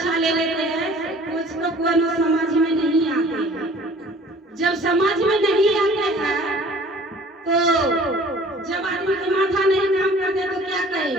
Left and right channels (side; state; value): both; normal; correlation 0.50